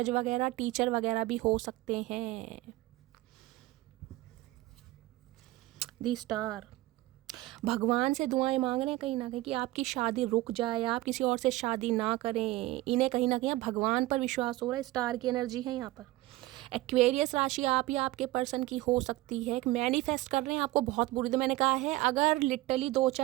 वगैरह, टीचर वगैरह भी हो सकते हैं। दी स्टार। भगवान से दुआएं मांग रहे हैं कहीं ना कहीं कि आपकी शादी रुक जाए, आप किसी और से शादी ना करें। इन्हें कहीं ना कहीं भगवान पर विश्वास हो रहा है। स्टार की एनर्जी है यहाँ पर। एक्वेरियस राशि आप या आपके पर्सन की हो सकती है। मैनिफेस्ट कर रहे हैं आपको बहुत बुरी। तो मैंने कहा है अगर लिटरली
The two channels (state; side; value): quieter; left; 18.0 dB